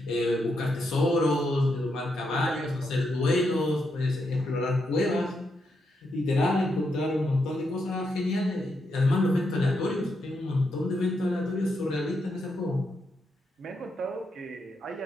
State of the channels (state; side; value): normal; both; correlation 0.82